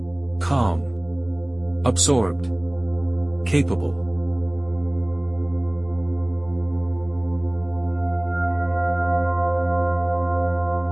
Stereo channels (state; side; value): noise; left; hum, 29 dB below the sound